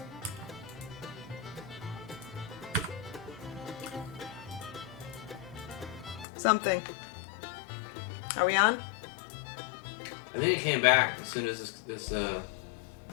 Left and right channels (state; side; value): drops out; right; at 6.2 s